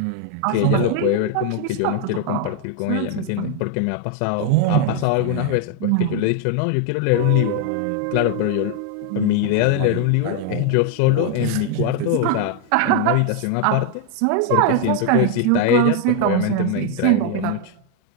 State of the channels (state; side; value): different; both; correlation 0.00